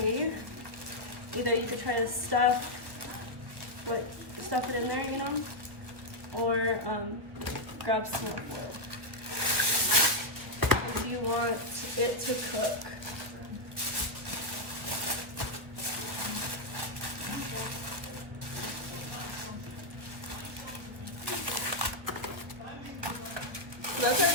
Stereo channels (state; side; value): late; left; 1.3 ms